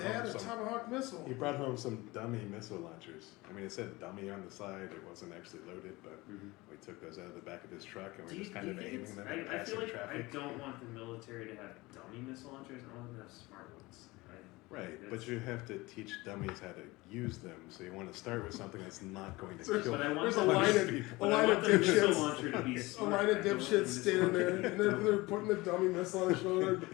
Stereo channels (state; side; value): quieter; right; 21.6 dB